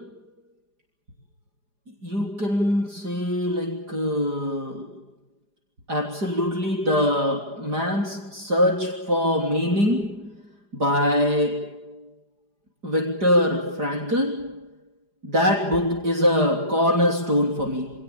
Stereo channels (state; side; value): late; left; 4.9 ms